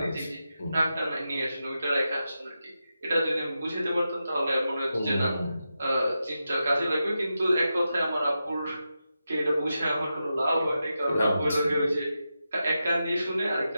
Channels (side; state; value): both; inverted; correlation -0.89